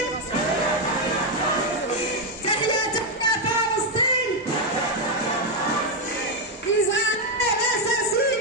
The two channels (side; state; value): both; normal; correlation 0.03